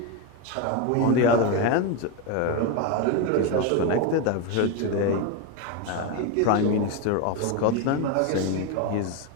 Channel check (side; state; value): both; different; correlation 0.03